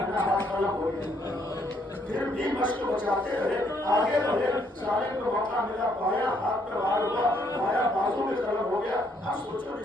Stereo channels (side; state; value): both; normal; correlation 0.70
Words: ہاتھ قلم ہو گیا، پھر بھی مشق کو بچاتے رہے، آگے بڑھے، سالم کو موقع ملا، بایاں ہاتھ پہ وار ہوا، بایاں بازو میں قلم ہو گیا۔ اب سوچو